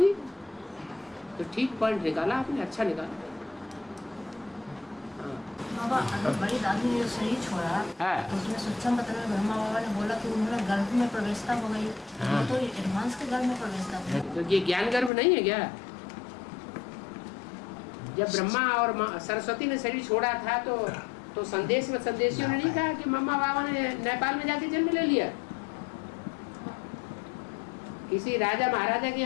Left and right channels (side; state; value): right; drops out; at 15.1 s